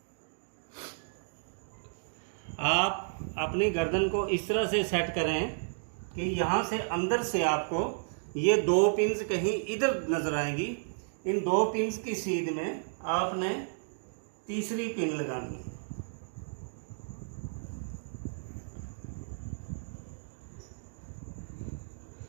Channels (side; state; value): left; silent; digital silence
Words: आप अपनी गर्दन को इस तरह से सेट करें कि यहाँ से अंदर से आपको ये 2 पिन्स कहीं इधर नज़र आएंगी। इन 2 पिन्स की सीध में आपने तीसरी पिन लगानी है।